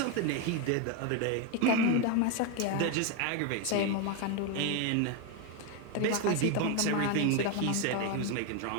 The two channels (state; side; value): different; both; correlation 0.02